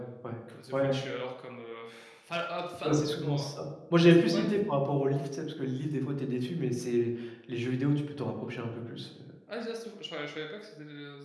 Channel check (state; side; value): identical; both; correlation 1.00